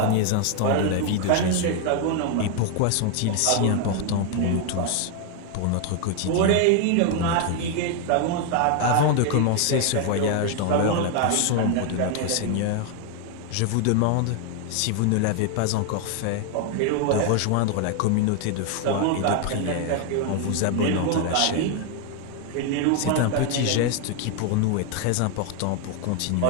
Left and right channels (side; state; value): both; different; correlation 0.00